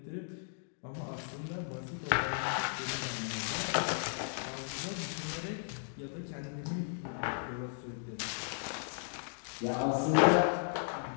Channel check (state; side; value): silent; right; digital silence